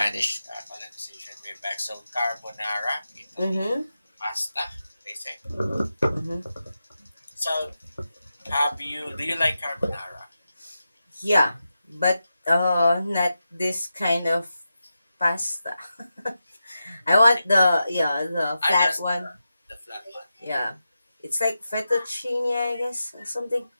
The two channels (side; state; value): both; inverted; correlation -0.90